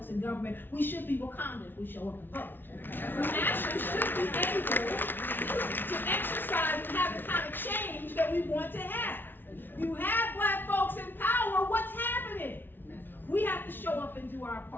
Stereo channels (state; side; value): late; right; 0.097 ms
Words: in government, we should be Wakanda if we show up and vote. We actually should be able to exercise and have the kind of change that we want to have. You have black folks in power, what's happening? We have to show up and do our